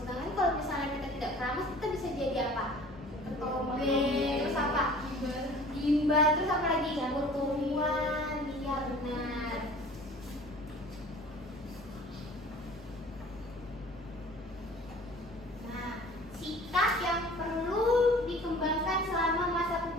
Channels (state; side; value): normal; both; correlation 0.47